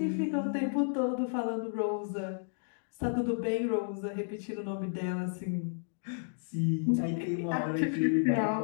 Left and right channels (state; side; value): silent; right; digital silence